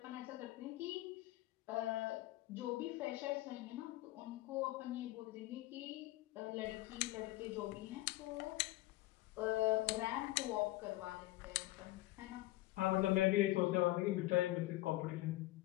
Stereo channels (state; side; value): quieter; right; 17.9 dB